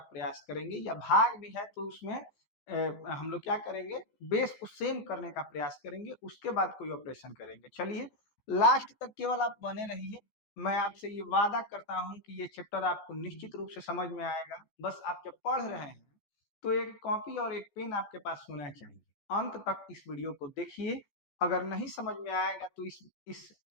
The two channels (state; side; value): late; right; 15 ms